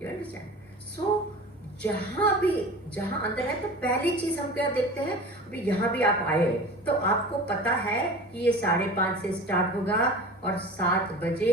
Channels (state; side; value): normal; both; correlation 0.36